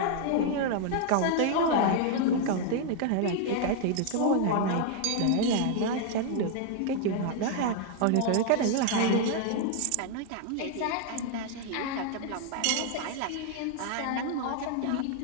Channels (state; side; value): different; both; correlation 0.00